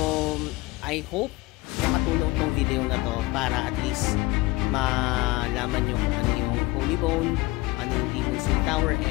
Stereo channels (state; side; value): quieter; right; 21.3 dB